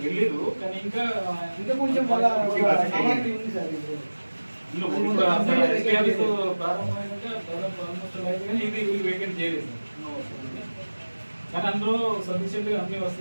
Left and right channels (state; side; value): inverted; both; correlation -1.00